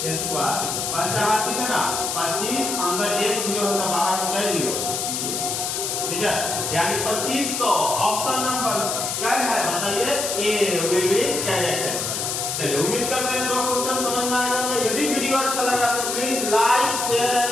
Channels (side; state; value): left; noise; hiss, 2 dB below the sound